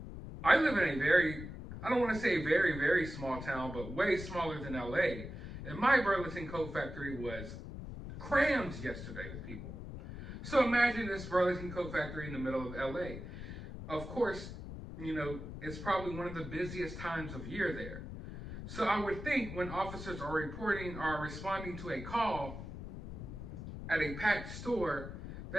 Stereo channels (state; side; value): noise; left; rumble, 9 dB below the sound